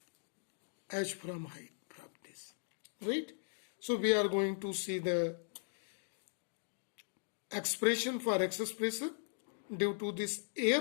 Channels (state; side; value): silent; right; digital silence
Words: h from height from this, right? So we are going to see the expression for excess pressure due to this